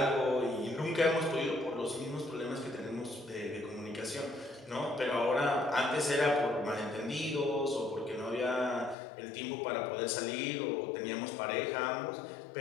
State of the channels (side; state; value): right; drops out; at 9.0 s